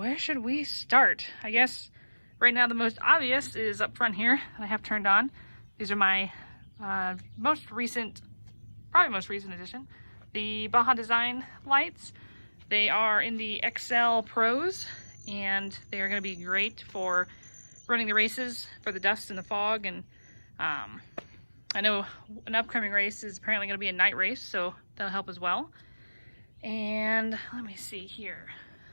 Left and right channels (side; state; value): both; inverted; correlation -1.00